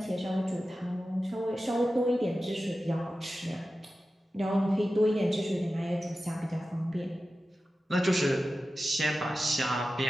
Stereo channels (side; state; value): both; normal; correlation 0.94